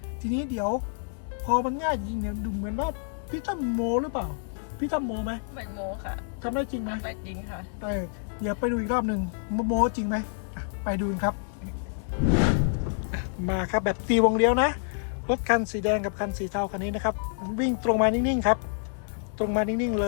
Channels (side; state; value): right; silent; 59 dB below the other